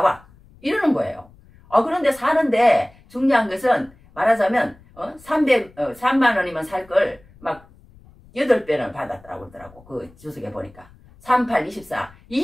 이러는 거예요. 그런데 사는데 중요한 것은 말하자면 3만 원이면 살 걸 막 8배는 받았다고 그러더라고. 그 주석에 보니까 38,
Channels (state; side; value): noise; left; rumble, 26 dB below the sound